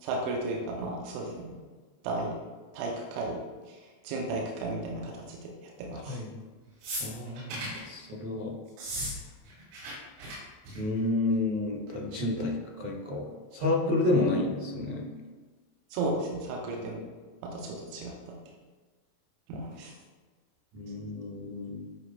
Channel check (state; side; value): late; left; 28 ms